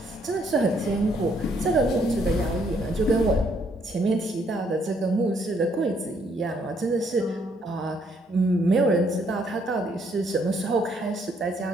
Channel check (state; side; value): normal; both; correlation 0.69